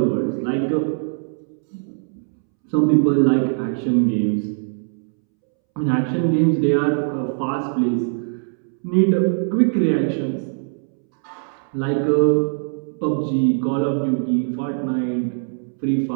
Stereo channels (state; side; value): silent; left; 65 dB below the other